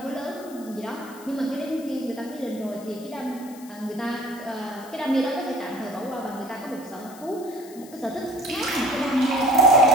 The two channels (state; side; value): noise; left; hiss, 21 dB below the sound